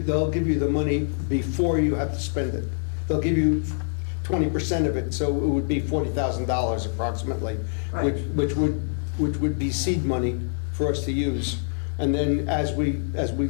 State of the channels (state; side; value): silent; right; digital silence